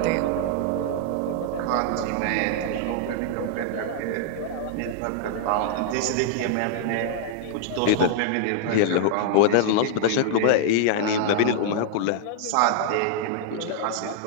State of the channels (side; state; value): both; different; correlation -0.01